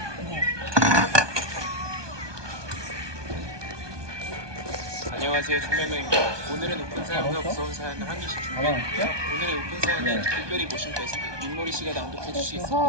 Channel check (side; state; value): left; late; 1.2 ms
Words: 안녕하세요, 총명명입니다. 오늘은 오픈 사연과 무서운 사연을 한 개씩 준비했는데요. 오늘의 오픈 사연은 특별히 모신 게스트 민모리 씨가 낭독해 주시겠습니다.